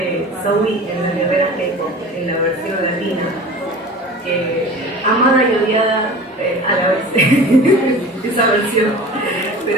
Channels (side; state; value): both; normal; correlation 0.38